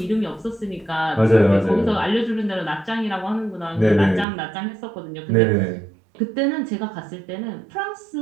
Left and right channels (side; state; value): left; drops out; at 4.2 s